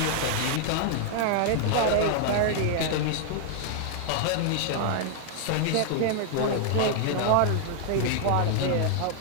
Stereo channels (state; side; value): different; both; correlation 0.00